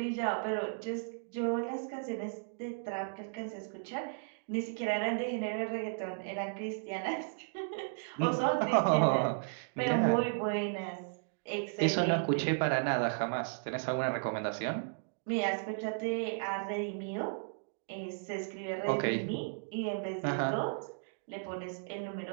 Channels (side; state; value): left; silent; digital silence